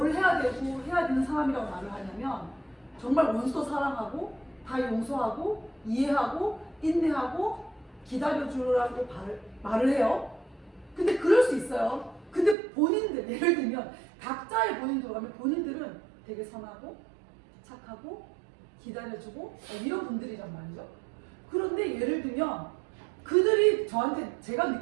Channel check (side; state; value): left; drops out; at 12.6 s